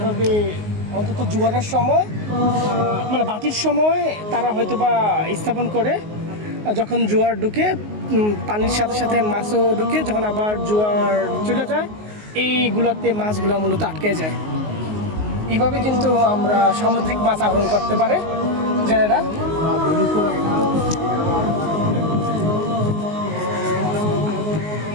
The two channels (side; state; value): left; late; 19 ms